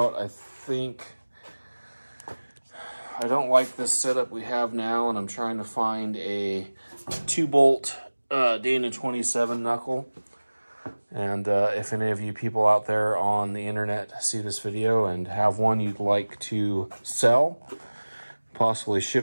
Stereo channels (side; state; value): both; inverted; correlation -1.00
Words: I think I don't like this setup we have now, and I'm trying to find a 2-bolt Dana 27 knuckle. And if any of you people out there on the internet see this video and have one you'd like to sell, possibly